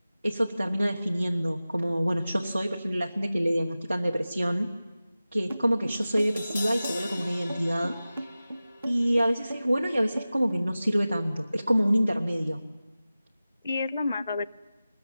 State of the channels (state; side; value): inverted; both; correlation -0.96